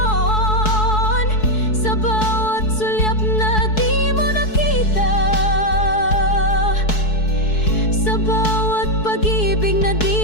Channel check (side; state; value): right; late; 4.6 ms